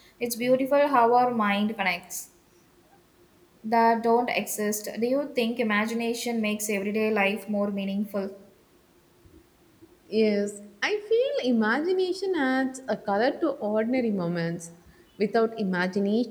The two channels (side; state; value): both; identical; correlation 1.00